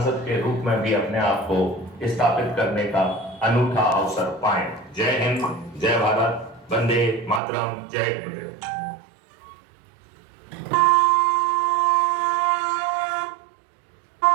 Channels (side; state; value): left; drops out; at 7.4 s